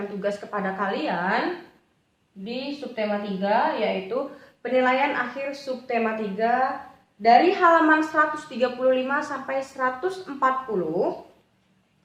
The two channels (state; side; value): identical; both; correlation 1.00